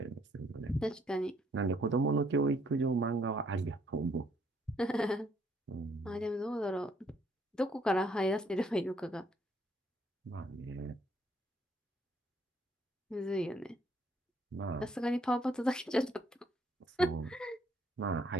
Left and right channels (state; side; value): normal; both; correlation 0.68